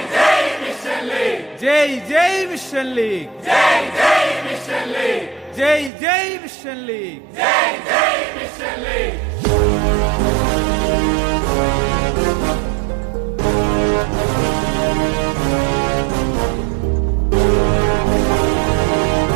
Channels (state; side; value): drops out; left; at 5.9 s